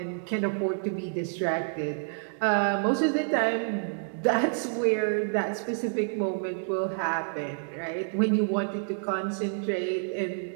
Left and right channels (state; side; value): silent; left; digital silence